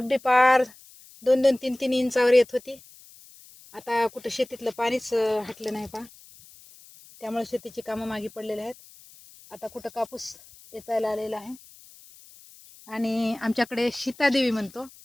पार 2-2, 3-3 इंचावर येत होती. आता कुठं शेतीतलं पाणीच हटलं नाही पहा, त्यामुळे शेतीची कामं मागे पडलेली आहेत. आता कुठं कापूस वेचायला आलेला आहे आणि आमच्याकडे सीतादेवी म्हणतो,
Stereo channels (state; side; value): noise; left; hiss, 23 dB below the sound